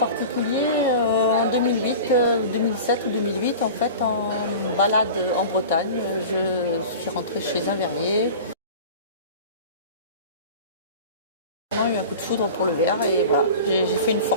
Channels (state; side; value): inverted; both; correlation -0.36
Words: en 2008, 2007 ou 2008, en fait, en balade en Bretagne, je suis rentrée chez un verrier. J'ai eu un coup de foudre pour le verre et voilà, j'ai fait une